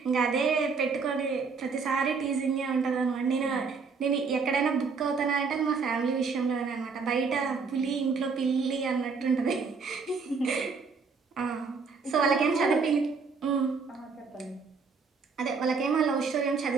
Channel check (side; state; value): left; quieter; 5.0 dB